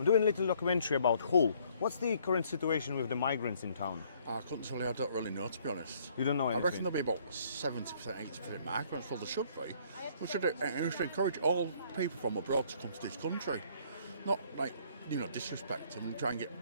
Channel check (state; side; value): inverted; both; correlation -0.63